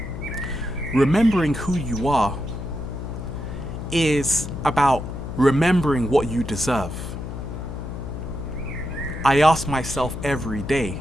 Remembering who you are is about remembering what you deserve. I ask myself every day,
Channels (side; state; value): left; noise; hum, 7 dB below the sound